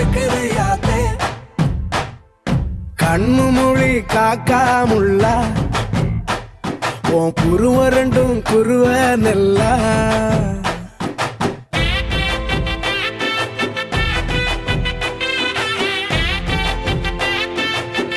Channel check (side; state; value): both; identical; correlation 1.00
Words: யாத்தே கண்ணு மொழி காக்காமுள்ள உன் குருவ ரெண்டும் குருவ நெல்லா